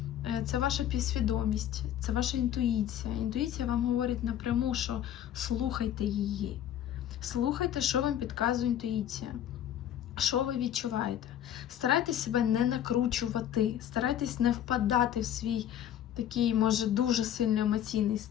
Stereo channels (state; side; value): quieter; right; 10.7 dB